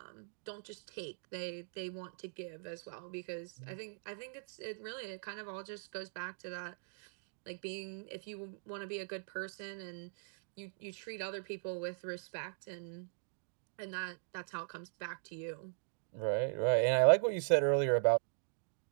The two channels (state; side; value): silent; left; digital silence